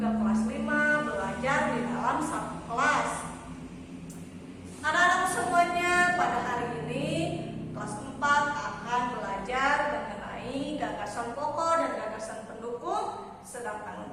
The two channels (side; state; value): both; identical; correlation 1.00